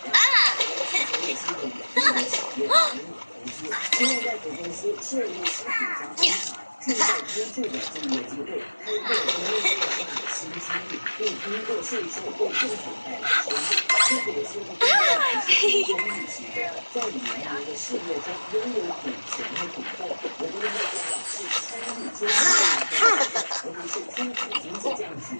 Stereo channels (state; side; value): inverted; both; correlation -1.00